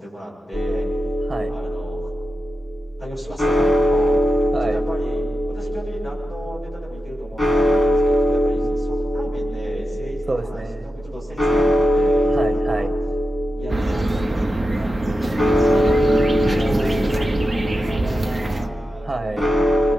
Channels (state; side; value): normal; both; correlation 0.91